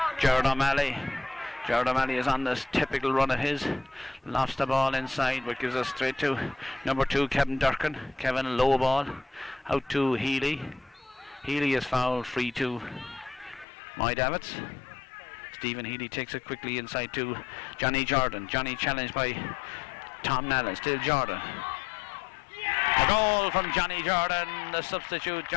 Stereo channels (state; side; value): drops out; right; at 13.7 s